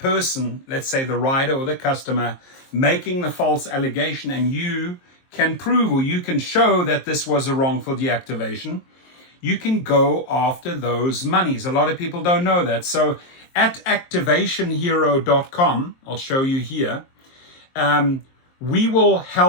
let's say the rider or the customer, making the false allegation, and you can prove or you can show that this was a wrongful deactivation, you can go after those monies. A lot of people don't know that. So at activationhero.com, I'll show you here, we will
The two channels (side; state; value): right; late; 23 ms